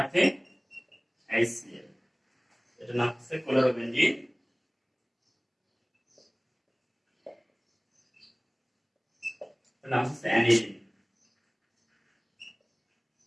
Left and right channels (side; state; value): both; identical; correlation 1.00